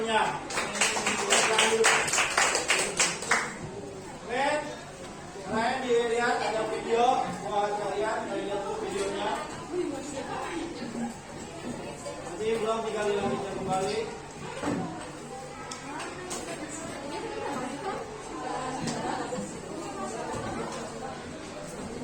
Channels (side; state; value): both; identical; correlation 1.00